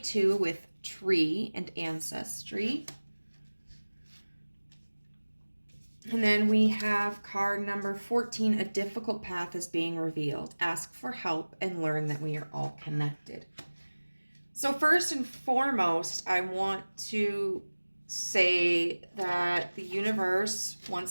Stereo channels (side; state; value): both; inverted; correlation -1.00